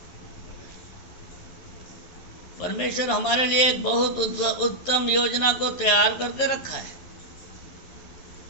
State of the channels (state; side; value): late; right; 11 ms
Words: परमेश्वर हमारे लिए एक बहुत उत्तम योजना को तैयार करके रखा है,